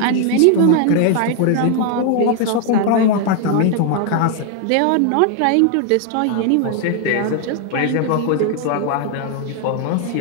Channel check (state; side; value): different; both; correlation 0.00